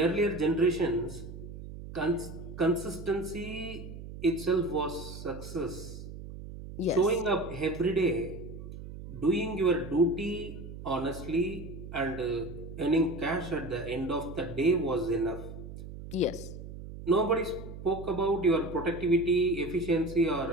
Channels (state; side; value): noise; right; hum, 11 dB below the sound